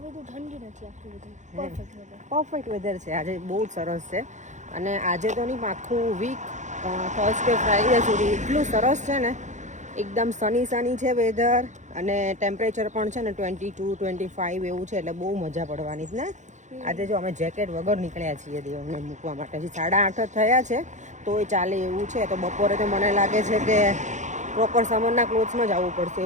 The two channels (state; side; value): late; left; 0.35 ms